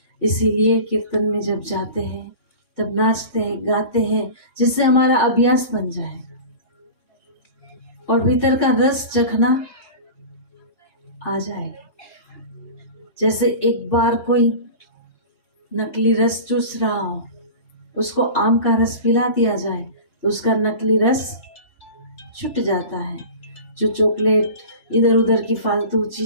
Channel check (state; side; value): late; right; 3.4 ms